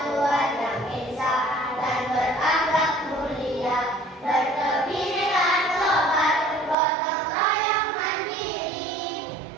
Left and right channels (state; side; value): drops out; left; at 6.8 s